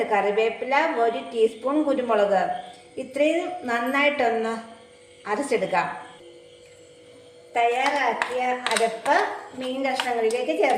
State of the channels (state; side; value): identical; both; correlation 1.00